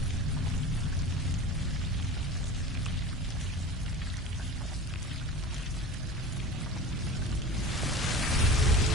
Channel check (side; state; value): both; normal; correlation 0.35